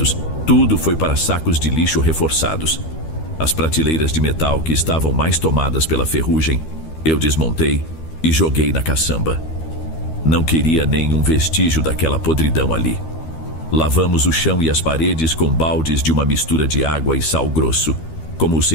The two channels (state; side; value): late; right; 13 ms